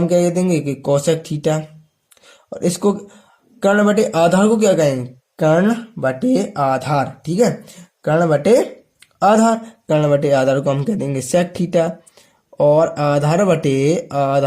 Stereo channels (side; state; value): both; identical; correlation 1.00